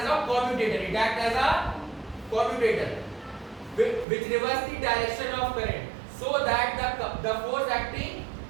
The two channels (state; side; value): drops out; left; at 4.0 s